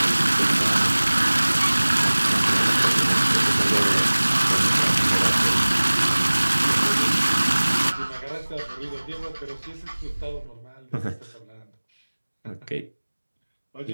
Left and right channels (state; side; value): inverted; both; correlation -1.00